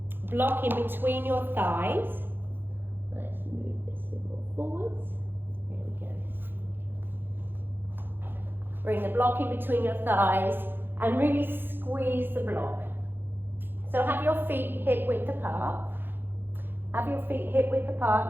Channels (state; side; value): late; left; 0.10 ms